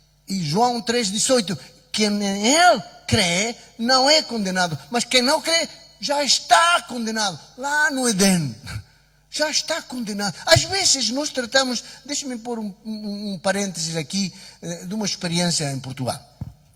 João 3,18, quem nele crê não é condenado, mas quem não crê já está condenado lá no Éden. Já está condenado. Às vezes nós tratamos, deixa-me pôr um parênteses aqui, de uma experiência em Portugal.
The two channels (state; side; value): identical; both; correlation 1.00